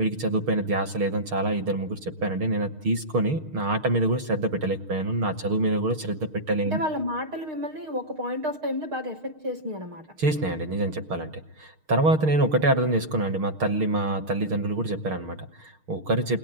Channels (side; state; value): left; late; 6.5 ms